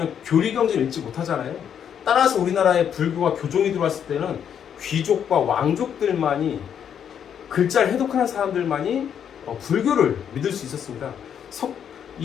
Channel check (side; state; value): right; quieter; 8.5 dB